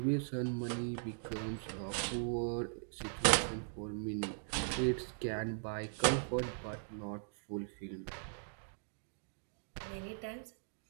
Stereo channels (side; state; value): left; silent; digital silence